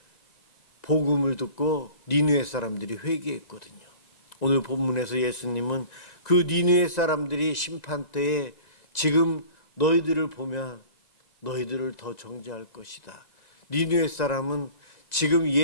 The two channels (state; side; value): late; right; 1.9 ms